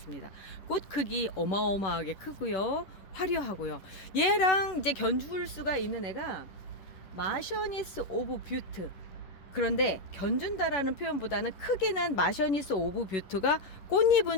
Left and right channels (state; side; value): late; right; 10 ms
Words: 꽃 크기 어마어마하게 크고요, 화려하고요. 얘랑 이제 견줄 수가 있는 애가 마셔니스 오브 뷰트. 그런데 견준다라는 표현보다는 크기는 마셔니스 오브 뷰트가